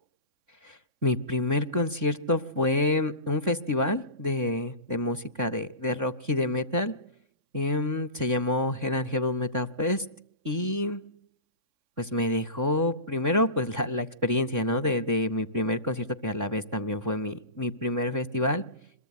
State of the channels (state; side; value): late; left; 3.6 ms